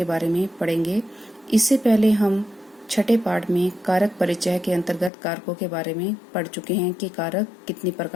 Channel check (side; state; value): right; drops out; at 5.1 s